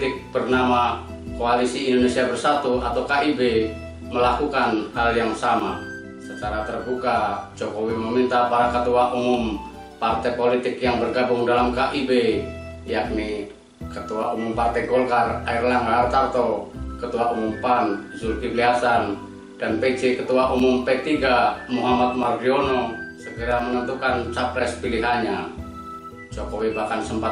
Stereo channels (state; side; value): identical; both; correlation 1.00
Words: bernama Koalisi Indonesia Bersatu atau KIB melakukan hal yang sama. Secara terbuka, Jokowi meminta para ketua umum partai politik yang bergabung dalam KIB, yakni Ketua Umum Partai Golkar Airlangga Hartarto, Ketua Umum PAN Zulkifli Hasan, dan PJ Ketua Umum P3 Muhammad Mardiono segera menentukan capres pilihannya. Jokowi bahkan